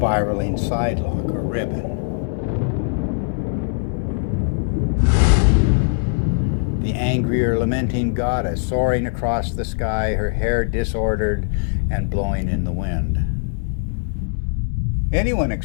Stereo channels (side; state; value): right; silent; digital silence